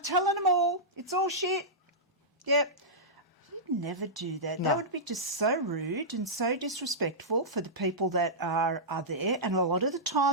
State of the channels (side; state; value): both; normal; correlation -0.12